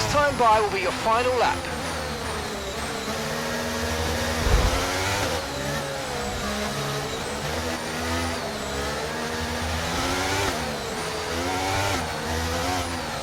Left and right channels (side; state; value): both; identical; correlation 1.00